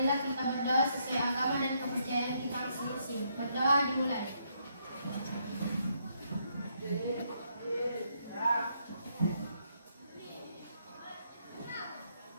Marilah kita berdoa sesuai agama dan kepercayaan kita masing-masing. Berdoa dimulai.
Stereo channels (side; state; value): both; inverted; correlation -0.75